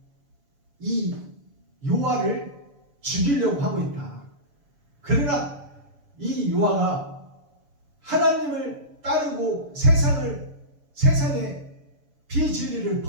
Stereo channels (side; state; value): left; late; 7.0 ms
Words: 이 요아를 죽이려고 하고 있다. 그러나 이 요아가 하나님을 따르고 세상의 비진리를